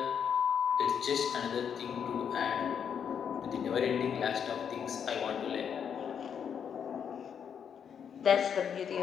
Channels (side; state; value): right; quieter; 7.7 dB